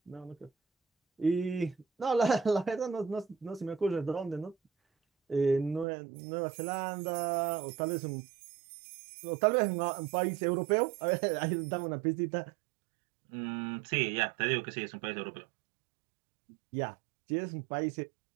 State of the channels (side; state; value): left; drops out; at 5.9 s